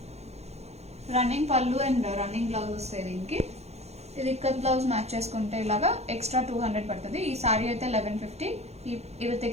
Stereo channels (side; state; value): left; late; 0.31 ms